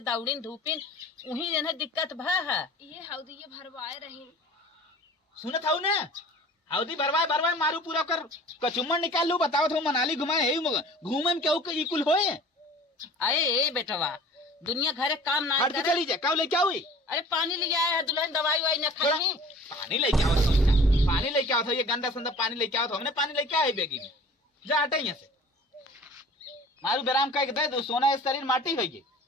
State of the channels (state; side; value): normal; both; correlation 0.45